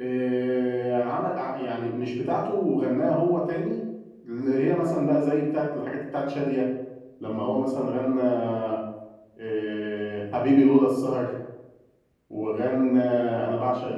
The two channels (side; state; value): both; identical; correlation 1.00